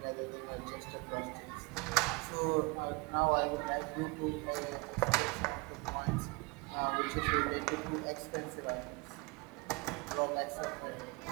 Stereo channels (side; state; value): left; quieter; 27.0 dB